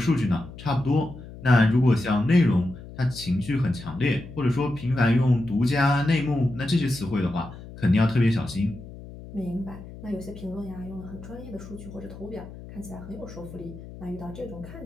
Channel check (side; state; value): left; noise; hum, 15 dB below the sound